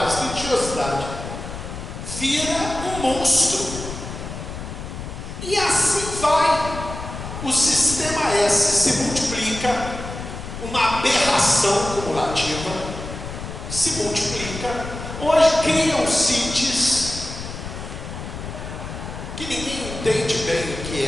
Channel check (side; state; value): left; noise; rumble, 9 dB below the sound